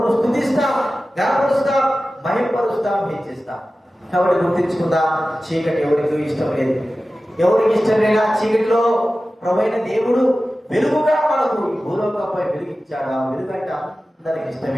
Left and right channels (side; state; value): both; normal; correlation 0.95